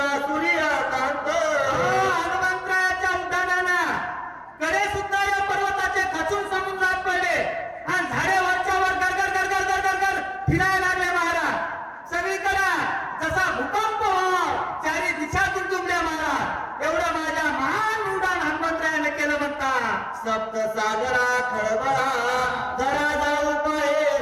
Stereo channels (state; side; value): identical; both; correlation 1.00